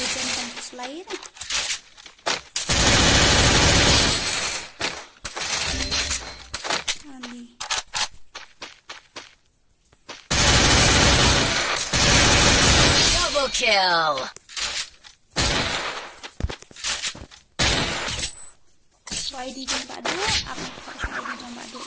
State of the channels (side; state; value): both; identical; correlation 1.00